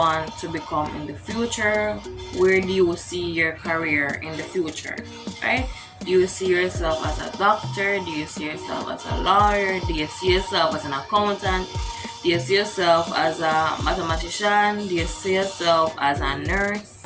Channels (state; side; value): identical; both; correlation 1.00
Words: to become in the future? Where do you see your career in the future, right? Do you see yourself as a doctor? Do you see yourself as a lawyer? Do you see yourself as an accountant? Do you see yourself as a mathematician? Do you see yourself as a